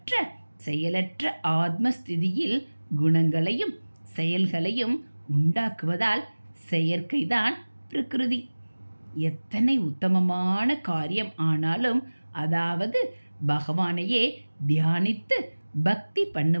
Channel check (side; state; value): both; inverted; correlation -1.00